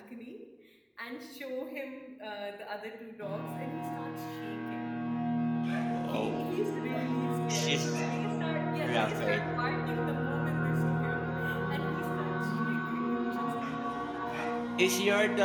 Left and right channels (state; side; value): identical; both; correlation 1.00